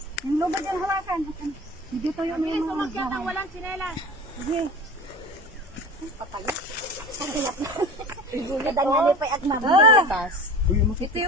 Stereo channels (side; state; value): both; normal; correlation 0.36